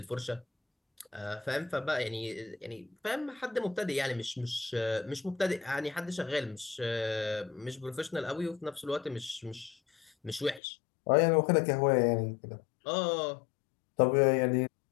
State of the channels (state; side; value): drops out; right; at 10.6 s